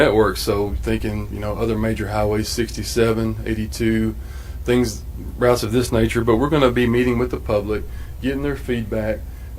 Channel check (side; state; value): both; identical; correlation 1.00